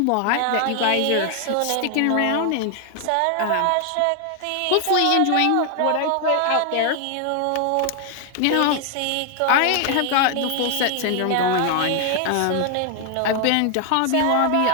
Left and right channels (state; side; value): different; both; correlation 0.00